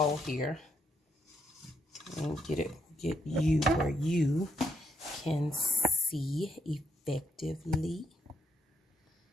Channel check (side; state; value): both; normal; correlation 0.75